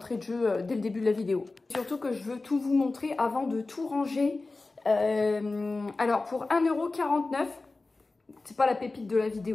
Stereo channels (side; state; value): right; quieter; 3.4 dB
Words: de jeu dès le début de la vidéo. Surtout que je veux tout vous montrer avant de tout ranger. Alors pour 1,49 €, c'est pas la pépite de la